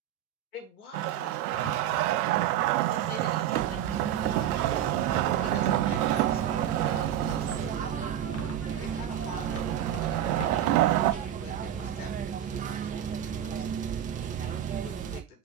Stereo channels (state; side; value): quieter; left; 10.8 dB